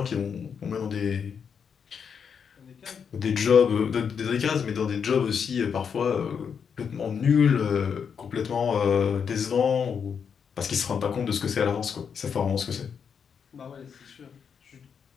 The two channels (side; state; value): right; quieter; 6.9 dB